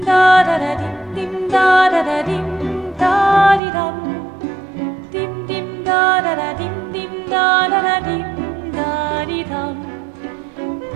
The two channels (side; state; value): left; drops out; at 3.6 s